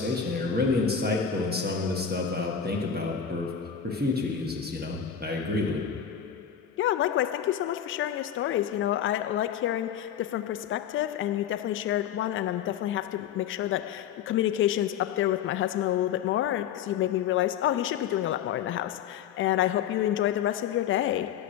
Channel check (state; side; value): quieter; right; 8.4 dB